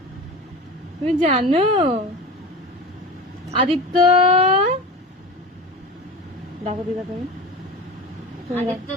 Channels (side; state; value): both; normal; correlation 0.30